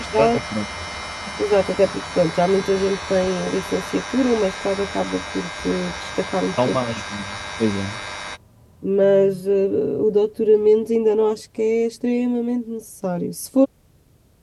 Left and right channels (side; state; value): both; identical; correlation 1.00